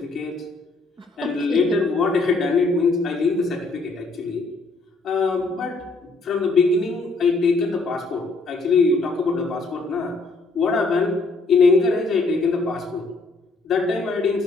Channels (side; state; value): right; quieter; 3.6 dB